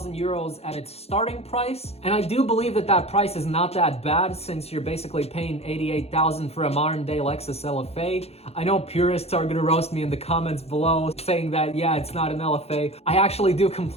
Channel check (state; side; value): late; right; 0.30 ms